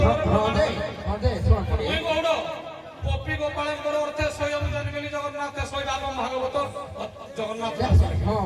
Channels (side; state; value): both; identical; correlation 1.00